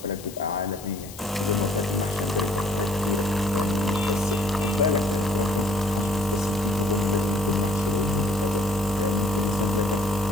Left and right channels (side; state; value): left; noise; hiss, 17 dB below the sound